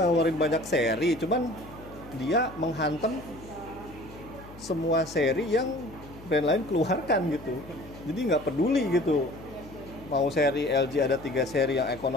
banyak seri, cuman dia menghantam semua seri yang brand lain keluarkan gitu. Jadi nggak peduli gitu, mau seri LG ada 3 seri yang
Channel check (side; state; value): left; noise; hum, 18 dB below the sound